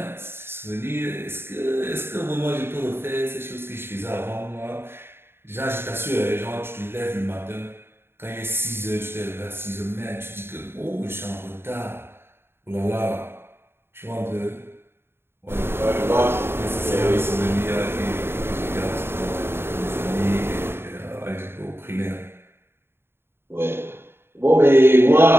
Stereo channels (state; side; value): late; left; 0.11 ms